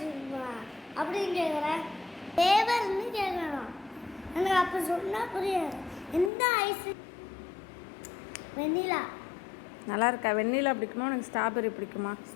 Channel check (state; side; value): drops out; right; at 6.3 s